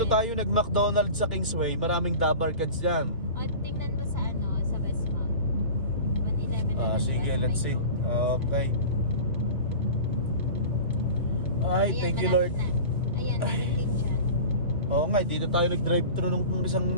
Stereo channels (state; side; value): inverted; both; correlation -0.36